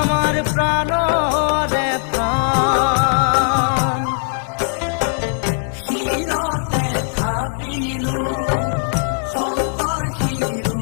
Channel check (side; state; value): right; silent; 62 dB below the other